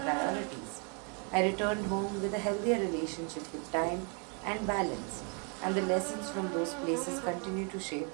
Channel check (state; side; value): quieter; left; 37.9 dB